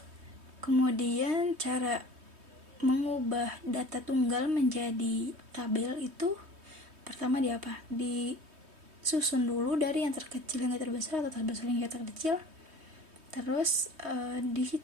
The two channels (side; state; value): left; late; 3.2 ms